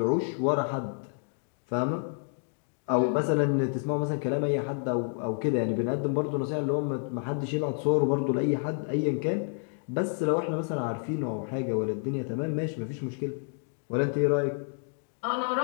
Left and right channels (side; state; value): right; silent; 55 dB below the other